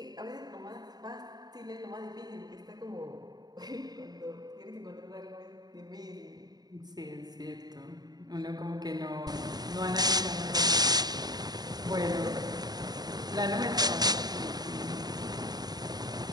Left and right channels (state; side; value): late; left; 0.19 ms